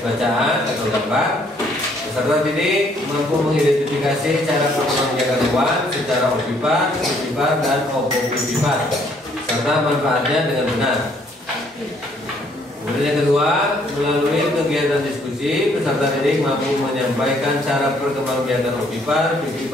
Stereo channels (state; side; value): normal; both; correlation 0.65